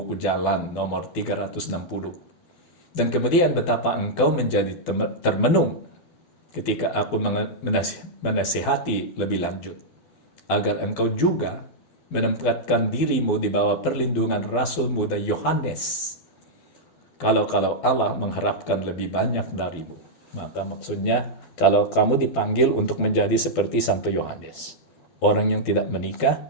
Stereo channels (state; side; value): late; right; 12 ms